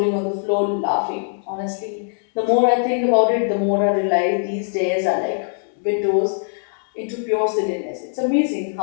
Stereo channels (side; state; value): right; silent; digital silence